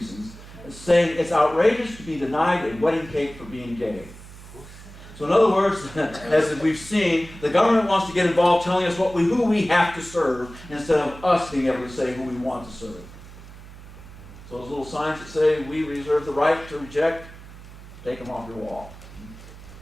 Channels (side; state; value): right; noise; hum, 17 dB below the sound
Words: saying it's outrageous to be denied a wedding cake for being gay. So in other words, as we've seen, the government wants to get involved telling us who we have to serve instead of us being able to say who we want to serve. So those little signs that say, we reserve the right to reject, take them off your wall.